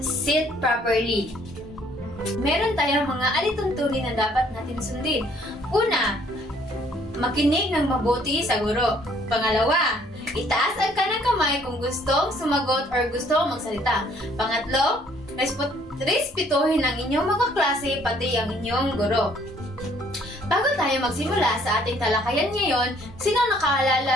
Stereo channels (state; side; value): normal; both; correlation 0.62